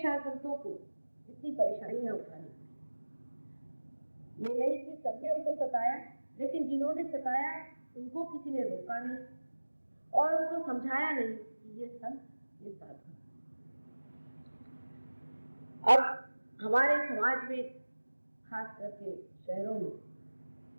संतों को इतनी परेशानियां उठानी पड़ी। ये नहीं कि सबने उनको सताया, लेकिन जिन्होंने सताया उनको किसी ने रोका नहीं और उनको समझाया नहीं कि ये संत, ये साधु। अब हमारे समाज में, खास करके शहरों में,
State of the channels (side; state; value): both; inverted; correlation -1.00